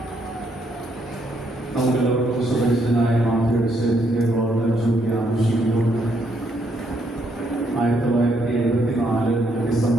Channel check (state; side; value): normal; both; correlation 0.73